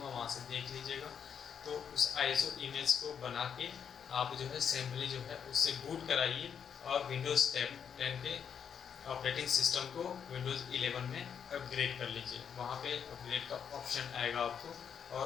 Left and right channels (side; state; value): right; quieter; 7.6 dB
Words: वहाँ से देख लीजिएगा। तो उस ISO इमेज को बना के आप जो है सिंपली जो है उससे बूट कराइए और विंडोज़ 10 के ऑपरेटिंग सिस्टम को विंडोज़ 11 में अपग्रेड कर लीजिए। वहाँ पे अपग्रेड का ऑप्शन आएगा आपको, और